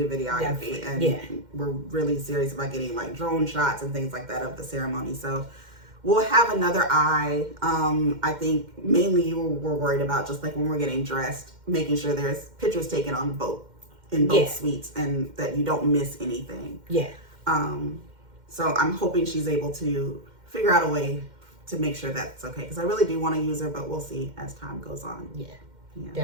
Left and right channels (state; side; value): late; left; 2.1 ms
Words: videography, and we're really serious about getting like drone shots and things like that of the ceremony. So we'll have another eye. I think mainly we're worried about just like when we're getting dressed, making sure there's pictures taken on both in both suites and that you don't miss anything. Yeah. So I'm hoping she's able to figure out a way to make sure that's okay, because I really do want to use her, but we'll see as time goes on. Yeah.